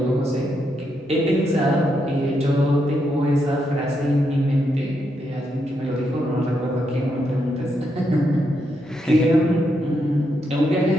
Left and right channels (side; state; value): both; normal; correlation 0.81